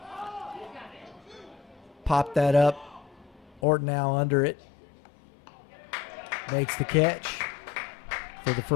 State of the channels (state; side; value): drops out; right; at 3.6 s